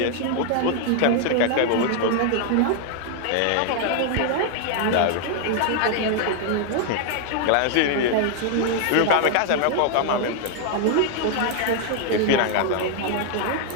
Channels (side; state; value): both; different; correlation 0.00